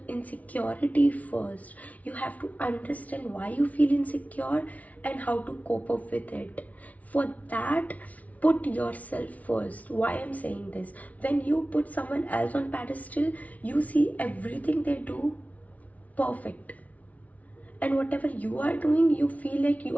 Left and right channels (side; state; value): right; late; 0.070 ms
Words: insecurity first. You have to understand why you feel insecure and how to cope up with it. For that, put yourself first. Why I'm saying this? When you put someone else on pedestal, you see everything they do perfect. And whatever you are doing, you feel like you